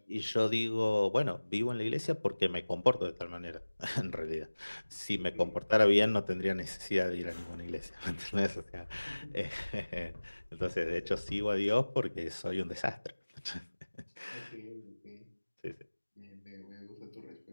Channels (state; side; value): inverted; both; correlation -1.00